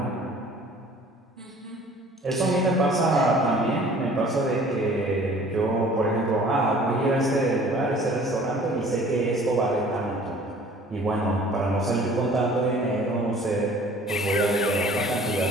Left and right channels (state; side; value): normal; both; correlation 0.51